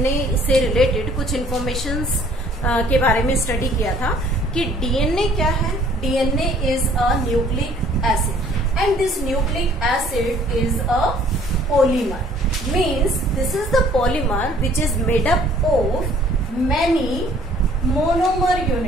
से रिलेटेड कुछ इंफॉर्मेशंस के बारे में स्टडी किया था कि डीएनए क्या है. DNA is a nucleic acid and this nucleic acid is a polymer. Means this is the polymer which is made up of many monomer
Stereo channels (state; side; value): normal; both; correlation 0.57